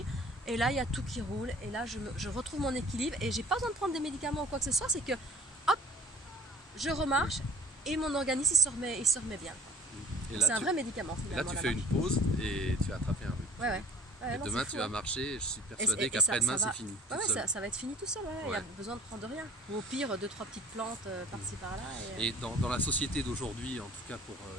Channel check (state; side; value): normal; both; correlation 0.48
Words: Et là, il y a tout qui roule. Et là, je retrouve mon équilibre. Et j'ai pas besoin de prendre des médicaments ou quoi que ce soit. C'est que, hop, je remarche et mon organisme il se remet bien. C'est un vrai médicament. Et là, tu fais une pause et tu as attrapé un rhume. Ouais, et demain, tu vas marcher. Je suis persuadé qu'après-demain, c'est fini. Ça va être fini tout seul. Il n'y a besoin de prendre rien. Ou au pire, 2-3 petites plantes par-ci par-là. Et dans la société d'aujourd'hui, en tout cas pour